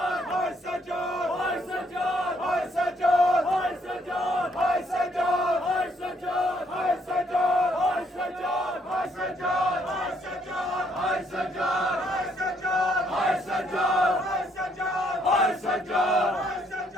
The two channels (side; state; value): both; normal; correlation 0.70